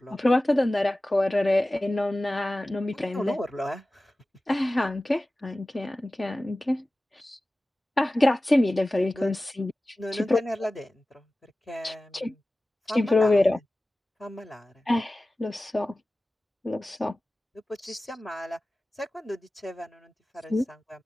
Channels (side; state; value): both; normal; correlation 0.97